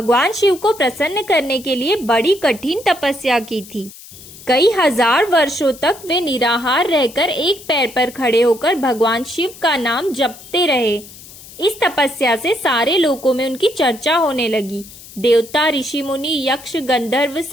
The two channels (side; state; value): left; noise; hiss, 18 dB below the sound